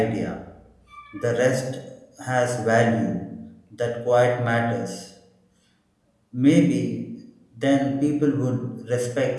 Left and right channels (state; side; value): identical; both; correlation 1.00